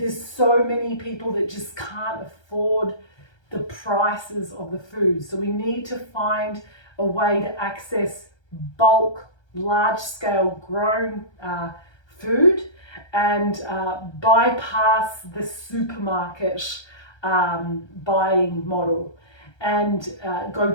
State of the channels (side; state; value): right; late; 1.3 ms